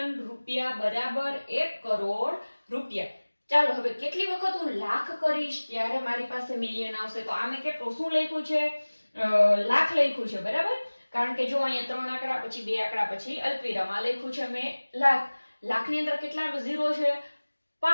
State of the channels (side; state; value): both; inverted; correlation -1.00